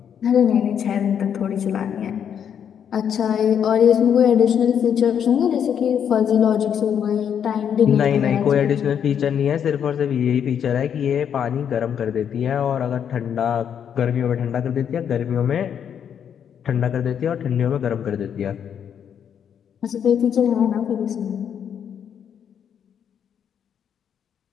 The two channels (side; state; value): right; quieter; 8.4 dB